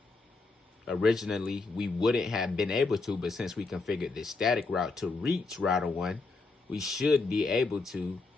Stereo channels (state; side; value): quieter; right; 3.7 dB